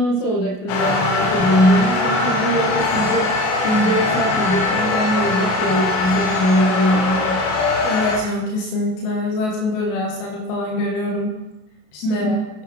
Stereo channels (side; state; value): right; late; 33 ms